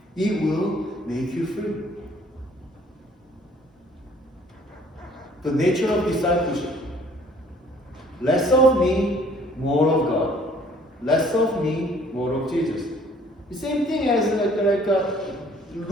It will make you free. The nature of discipleship. Less of me, more of God. Less of me, more of Jesus. The same thing as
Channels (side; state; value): both; normal; correlation 0.57